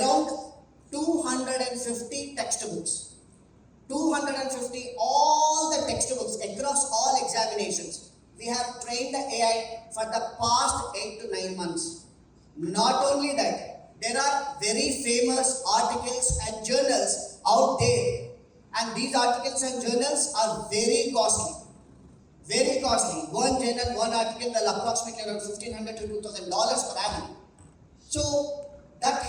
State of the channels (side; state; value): both; identical; correlation 1.00